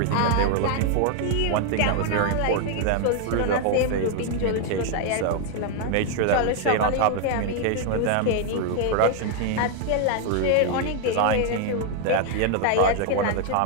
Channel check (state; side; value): different; both; correlation 0.00